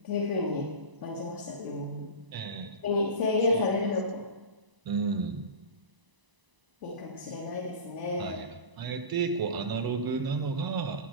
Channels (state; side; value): late; left; 1.0 ms